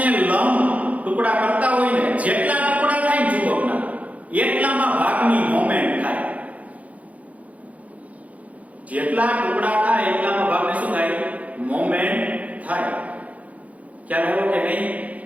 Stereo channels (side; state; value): left; late; 0.069 ms